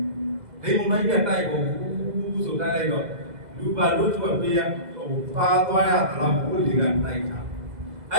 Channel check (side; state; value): left; late; 2.0 ms